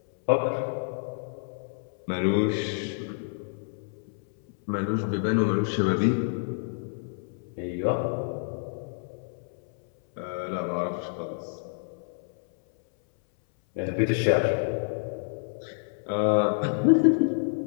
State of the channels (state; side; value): silent; right; 59 dB below the other